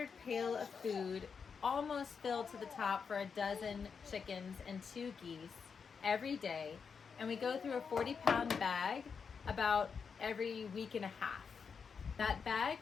pail of food almost filled to the top for a dozen chickens and 2 geese every day. And we go through a 40-pound bag about every week and a half. That bag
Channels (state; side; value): quieter; right; 6.0 dB